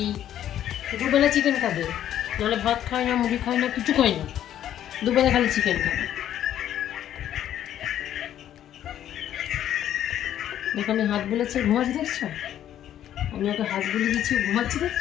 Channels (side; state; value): right; quieter; 11.2 dB